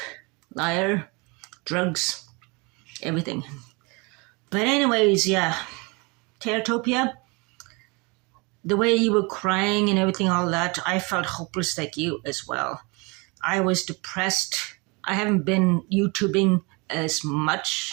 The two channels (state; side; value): quieter; left; 28.3 dB